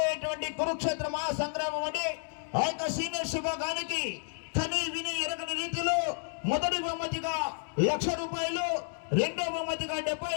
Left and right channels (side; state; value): right; silent; digital silence